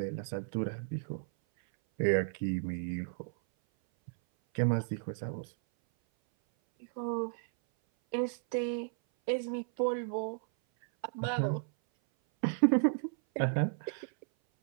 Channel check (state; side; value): silent; left; 55 dB below the other